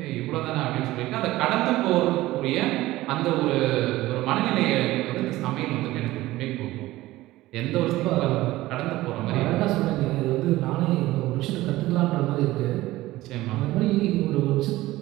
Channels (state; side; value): quieter; left; 17.3 dB